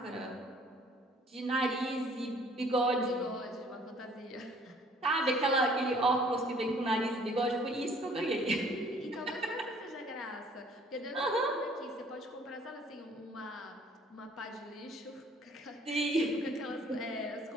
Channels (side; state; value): both; normal; correlation 0.57